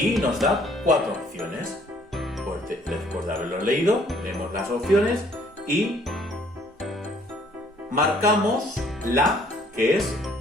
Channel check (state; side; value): normal; both; correlation 0.61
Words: nos da 4 opciones. Pues después de haberlo leído, leemos las opciones y marcamos la que es